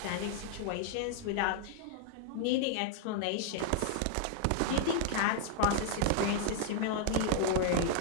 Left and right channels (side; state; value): both; different; correlation 0.00